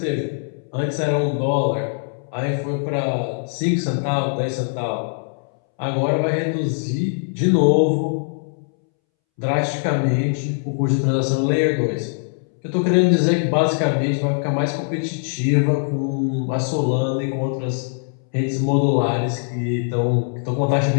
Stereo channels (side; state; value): right; silent; 65 dB below the other